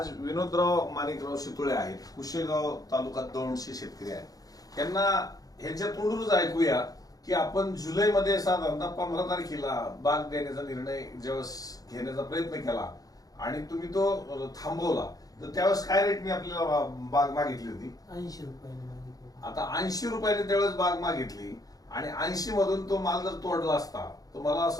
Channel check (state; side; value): late; right; 0.18 ms